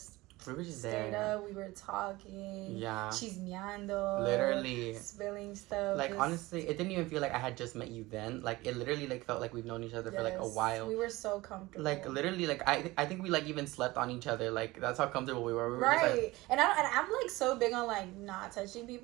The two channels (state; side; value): quieter; left; 20.1 dB